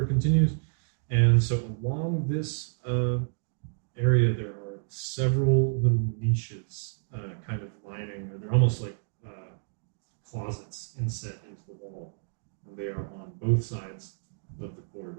continues. And so along this area, there are several little niches kind of lining, or they're almost like closets inset into the wall. And they are on both sides of the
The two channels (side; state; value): left; silent; digital silence